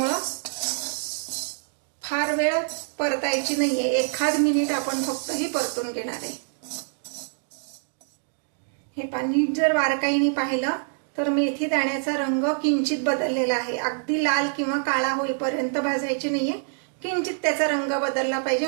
फार वेळ परतायची नाहीये, 1 मिनिट आपण फक्त ही परतून घेणार आहे। हे पाणी जर बारकाईने पाहिलं तर मेथी दाण्याचा रंग किंचित बदललेला आहे। अगदी लाल किंवा काळा होईपर्यंत भाजायची नाहीये, किंचित त्याचा रंग बदलला पाहिजे,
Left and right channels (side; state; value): left; silent; digital silence